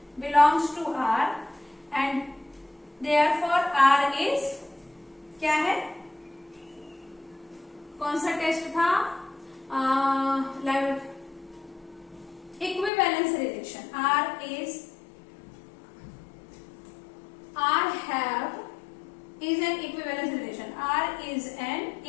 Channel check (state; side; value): drops out; right; at 12.9 s